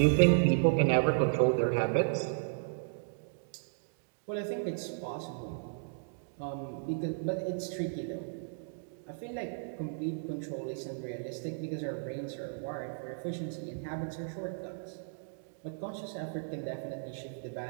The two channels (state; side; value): silent; left; digital silence